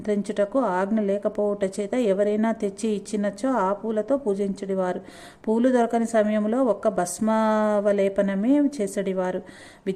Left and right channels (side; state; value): both; identical; correlation 1.00